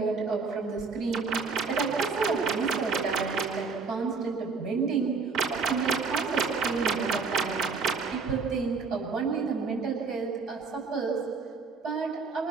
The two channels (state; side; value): quieter; left; 4.8 dB